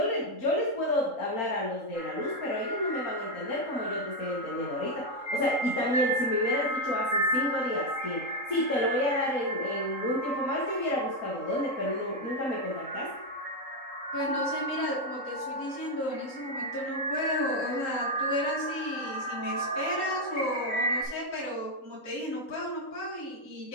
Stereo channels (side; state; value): right; late; 3.8 ms